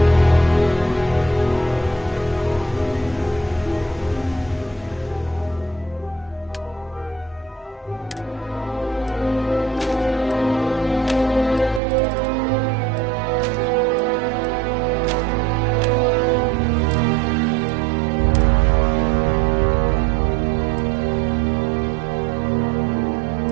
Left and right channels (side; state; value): left; drops out; at 11.8 s